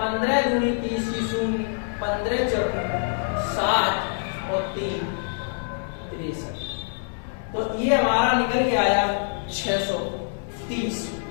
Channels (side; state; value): right; silent; 62 dB below the other